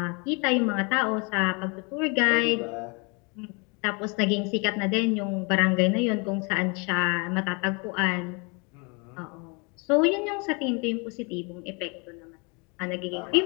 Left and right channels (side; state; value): right; quieter; 31.7 dB